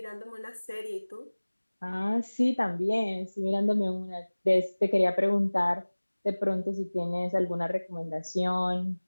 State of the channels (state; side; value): inverted; both; correlation -1.00